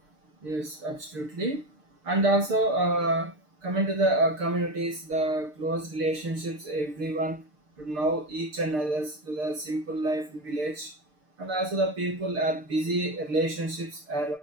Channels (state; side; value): late; left; 6.6 ms